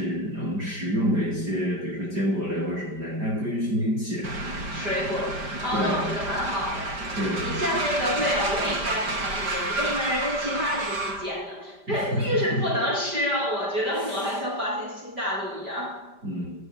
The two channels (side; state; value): left; late; 5.1 ms